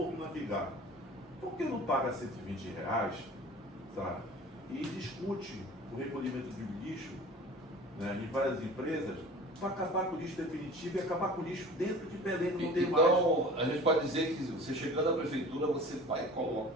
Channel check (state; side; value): normal; both; correlation 0.42